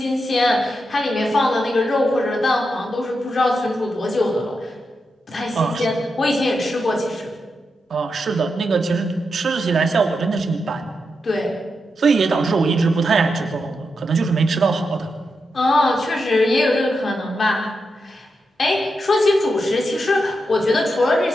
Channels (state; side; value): normal; both; correlation 0.86